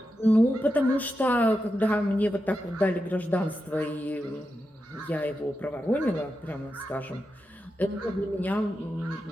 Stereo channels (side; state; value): both; normal; correlation 0.88